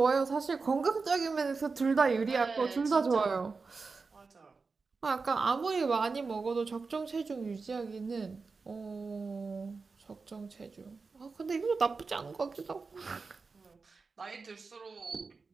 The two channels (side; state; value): left; quieter; 4.5 dB